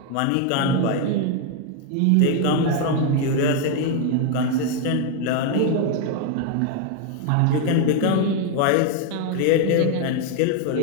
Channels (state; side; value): different; both; correlation 0.01